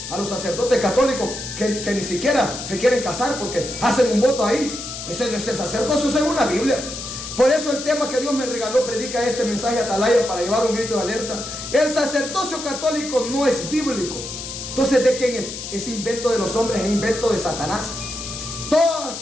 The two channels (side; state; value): left; noise; hiss, 8 dB below the sound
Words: a los sacerdotes católicos que ni siquiera se quieren casar porque hacen un voto ahí. Ese no es el sacerdocio según la Biblia. Por eso el tema que Dios me regaló predica este mensaje a Atalaya para llevar un grito de alerta. El sacerdocio católico no es bíblico. Entonces, ¿de quién es? Es invento de los hombres, es invento de Satanás. Todas,